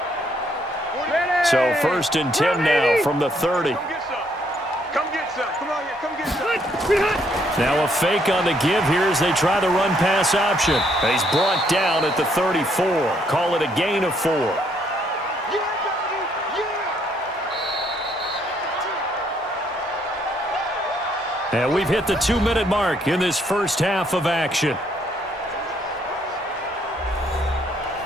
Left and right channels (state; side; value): normal; both; correlation 0.70